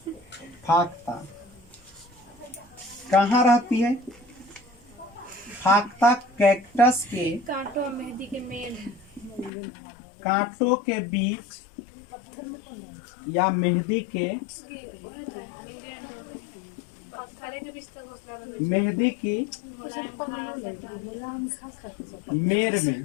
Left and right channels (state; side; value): drops out; right; at 9.5 s